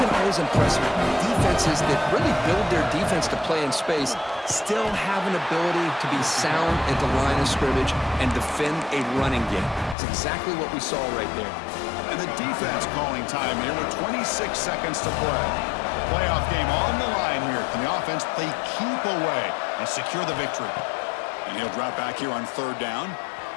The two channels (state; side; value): drops out; right; at 10.0 s